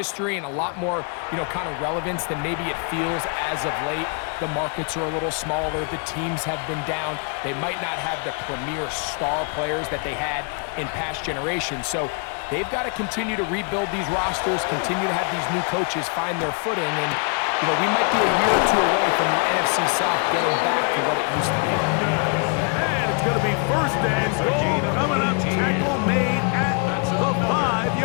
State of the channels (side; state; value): right; quieter; 37.7 dB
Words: and a lot more, kind of relevance than maybe it feels as of late. The markets are a little smaller. The teams have been down. They might not have the premier star players that they had in past generations. So they've got to continue to rebuild these rosters, continue to have these new coaches find their footing, and we might be a year or 2 away from the NFC South getting back to what it used to be. And it's going to be 1st and goal coming up. Tackle made at the